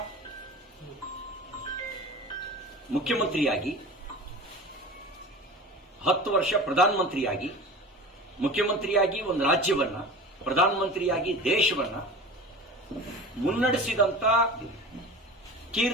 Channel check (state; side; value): normal; both; correlation 0.35